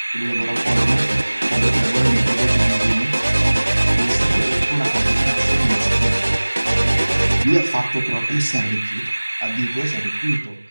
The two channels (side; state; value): both; inverted; correlation -1.00